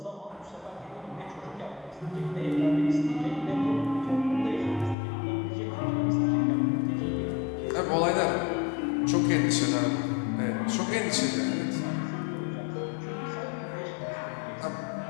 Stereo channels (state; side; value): drops out; right; at 5.0 s